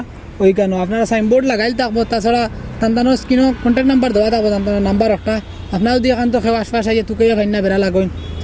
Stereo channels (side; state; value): both; identical; correlation 1.00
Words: ওইখানেও আপনারা সাইনবোর্ড লাগাইল থাকবো। তাছাড়া তান্তানোর স্ক্রিনও কন্ট্যাক্ট নাম্বার দেওয়া থাকবো, তান্তানোর নাম্বার একটা। আপনারা যদি এখান তো খেয়ে আশপাশ আইয়া তুকাইয়া ভাইনা বেড়া লাগাইন